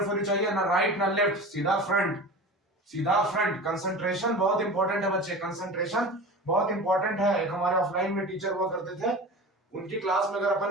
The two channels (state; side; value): normal; both; correlation 0.33